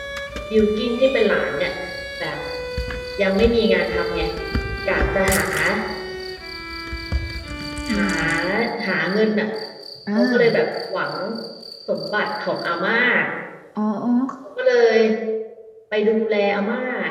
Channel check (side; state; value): both; identical; correlation 1.00